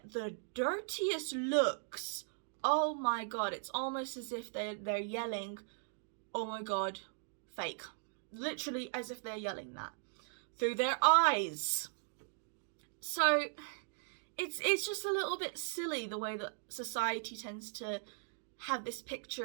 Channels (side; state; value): left; silent; digital silence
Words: the dirtiest looks. Oh my god, it's almost as if they're yelling, oh my god, fake. Literally as if they're yelling that through their eyes. So it's just a little bit silly the way that society tends to have this